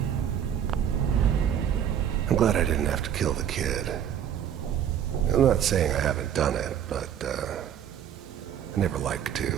I'm glad I didn't have to kill the kid. I'm not saying I haven't done it, but, I never like to.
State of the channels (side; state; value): left; quieter; 9.4 dB